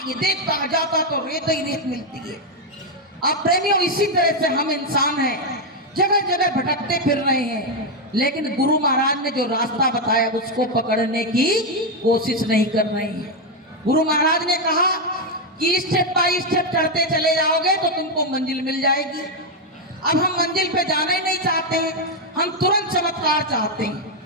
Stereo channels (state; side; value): normal; both; correlation 0.03